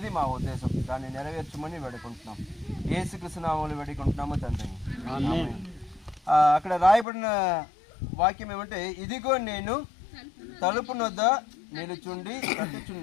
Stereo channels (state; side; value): drops out; right; at 7.1 s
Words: మా ఉద్దేశం. దాన్ని నెరవేర్చమని వేడుకుంటున్నాం. యేసుక్రీస్తు నామములో వేడుకుంటున్నాము తండ్రి. అక్కడ రాయబడిన వాక్యం ఏమంటే, ఇదిగో నేను తలుపు నొద్ద నిలుచుండి